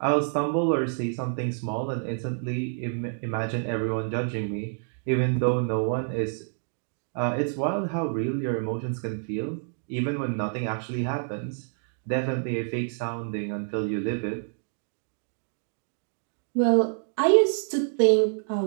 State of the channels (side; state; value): left; silent; digital silence